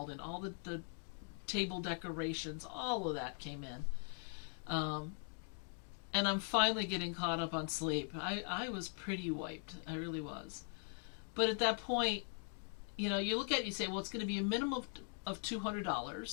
in all the table decorations, all of that came in. And I'm finally getting caught up on sleep. I was pretty wiped. I really was. But at that point, you look at it, you say, well, it's going to be a minimum of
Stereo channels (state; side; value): silent; right; 50 dB below the other